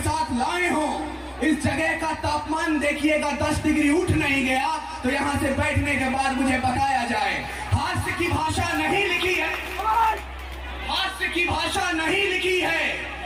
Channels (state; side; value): identical; both; correlation 1.00